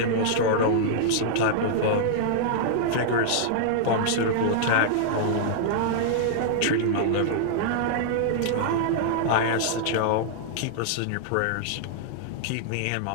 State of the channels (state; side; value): different; both; correlation -0.01